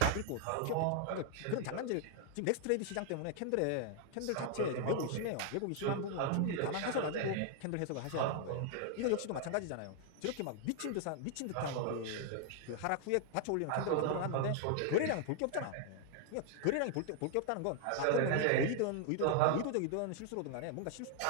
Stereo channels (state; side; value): different; both; correlation 0.00